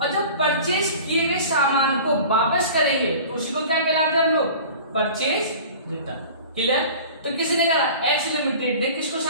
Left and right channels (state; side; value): inverted; both; correlation -0.41